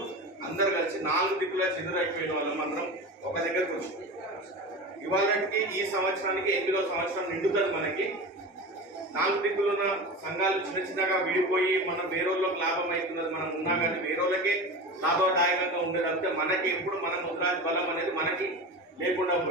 అందరు కలిసి 4 దిక్కులా చెదురైపోయిన వాళ్ళం అందరం ఒక దగ్గరకు వచ్చి ఇవాళకి ఈ సంవత్సరానికి 8వ సంవత్సరం నిండుతుంది. మనకి 4 దిక్కులున్న సంఘాలు చిన్నగా విడిపోయి మనం వేరేళ్ళకి లాభం అవుతున్నది మనం ఉన్నా కానీ వేరేళ్ళకే లాభదాయకంగా ఉండేది అంటే మనకి ఎప్పుడు మన ముద్రాజ్ బలం అనేది మనకి లేకుండా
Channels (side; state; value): both; normal; correlation 0.29